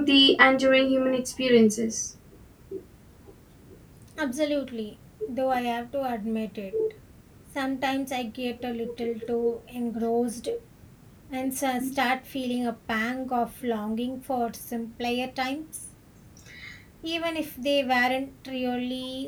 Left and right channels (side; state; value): both; identical; correlation 1.00